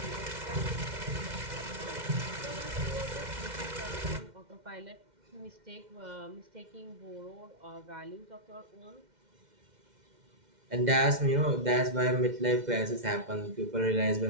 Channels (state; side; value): late; left; 2.1 ms